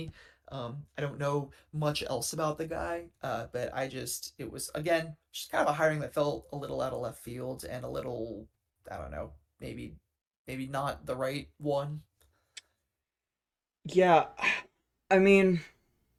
I don't know much else about the guy, but it was again just kind of a hiring that felt a little out of left field and a little I don't know maybe maybe not the right one. Yeah, I mean,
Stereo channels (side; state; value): both; identical; correlation 1.00